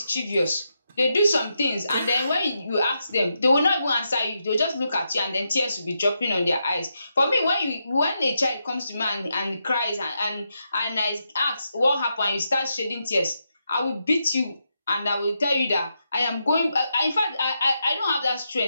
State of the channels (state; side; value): inverted; both; correlation -0.83